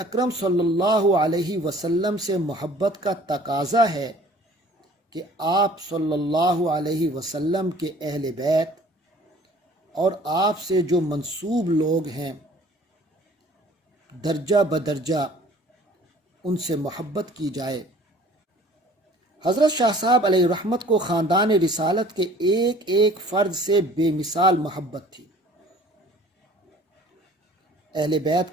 صلی اللہ علیہ وسلم سے محبت کا تقاضا ہے کہ آپ صلی اللہ علیہ وسلم کے اہل بیت اور آپ سے جو منسوب لوگ ہیں درجہ بدرجہ ان سے محبت کی جائے۔ حضرت شاہ صاحب علیہ رحمت کو خاندان رسالت کے ایک ایک فرد سے بے مثال محبت تھی۔ اہل بیت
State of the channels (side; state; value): both; normal; correlation 0.51